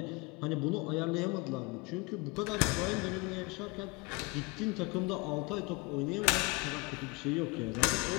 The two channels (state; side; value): quieter; right; 26.8 dB